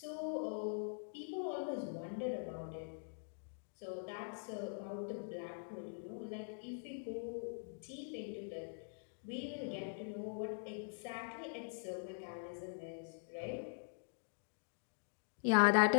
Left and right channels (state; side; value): silent; right; digital silence